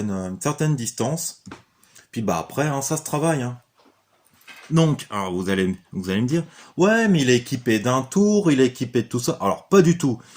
distance. Puis après, hein, ça se travaille, hein. Donc, alors vous allez me dire, ouais, mais il est équipé d'un tour, il est équipé de tout ça. Alors, pas du tout.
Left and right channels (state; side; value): identical; both; correlation 1.00